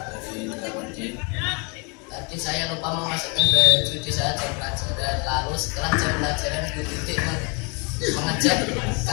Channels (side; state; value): right; quieter; 32.7 dB